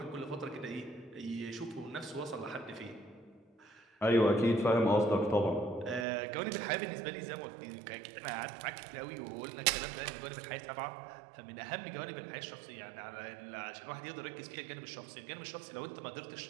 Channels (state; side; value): drops out; left; at 6.1 s